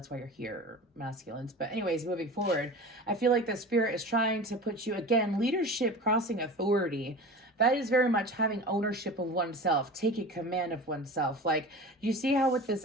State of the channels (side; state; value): both; normal; correlation 0.34